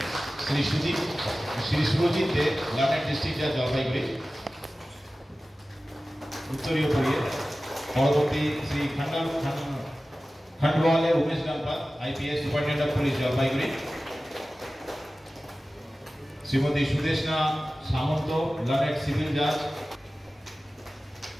Shri Surajit De, learned district জাজ, জলপাইগুড়ি। উত্তরীয় পড়িয়ে পরবর্তী Shri Khandwale Umesh Ganpat, IPS, superintendent of police, Jalpaiguri; Shrimati Sudeshna Samanta, learned civil জাজ;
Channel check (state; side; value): normal; both; correlation 0.96